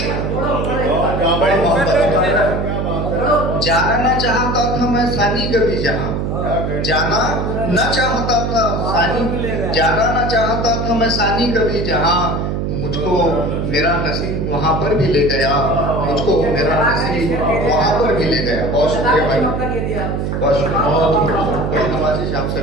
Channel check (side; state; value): right; noise; hum, 1 dB below the sound